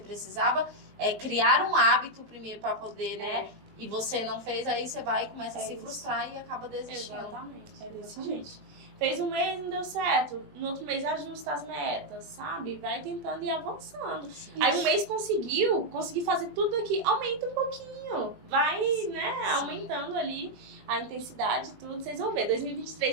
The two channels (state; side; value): late; left; 20 ms